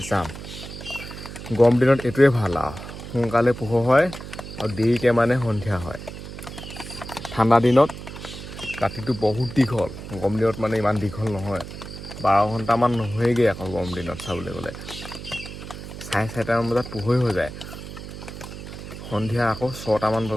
চাম। গৰম দিনত এইটোৱে ভাল আৰু সোনকালে পোহৰ হয় আৰু দেৰিকৈ মানে সন্ধিয়া হয়। ঠাণ্ডা দিনত ৰাতিটো বহুত দীঘল, গৰম দিনত মানে ইমান দীঘল নহয়। 12 ঘণ্টামান নহয়গৈ আকৌ গৰম দিনত চাবলৈ গ'লে। 4:30মান বজাত পোহৰ হৈ যায়, সন্ধিয়া আকৌ 6টামান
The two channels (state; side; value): noise; right; hum, 11 dB below the sound